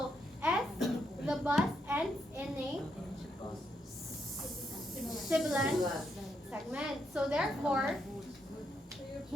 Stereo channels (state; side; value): normal; both; correlation 0.79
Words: S, the bus ends in a sibilant segment. So therefore,